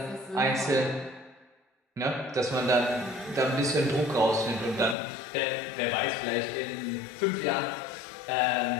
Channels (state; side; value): drops out; right; at 5.0 s